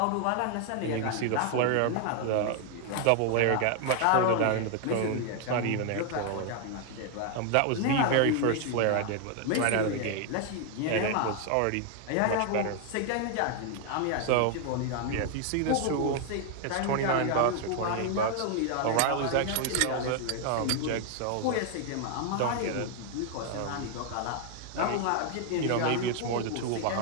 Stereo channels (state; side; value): different; both; correlation 0.00